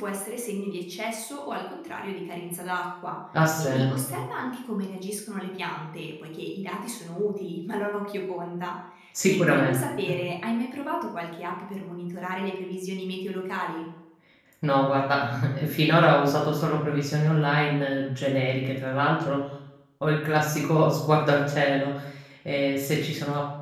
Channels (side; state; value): both; identical; correlation 1.00